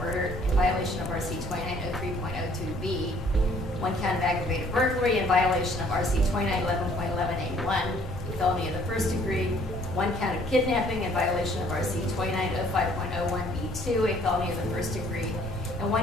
in violation of RC 2903.02B, 1 count of aggravated burglary in violation of RC 2911.11A1, a felony of the first degree, 1 count of kidnapping in violation of RC 2905.01B2, a felony of the first degree, and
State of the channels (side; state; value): both; normal; correlation 0.60